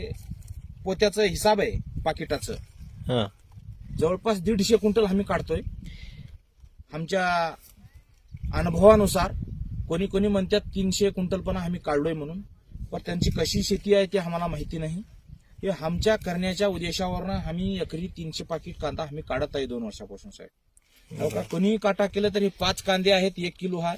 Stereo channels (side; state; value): both; identical; correlation 1.00